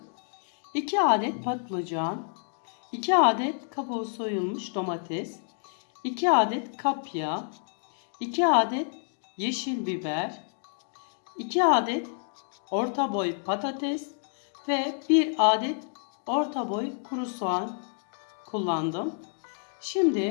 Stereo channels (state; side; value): silent; right; 59 dB below the other